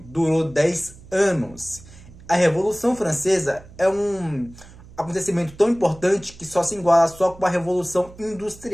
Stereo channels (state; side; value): noise; right; hum, 21 dB below the sound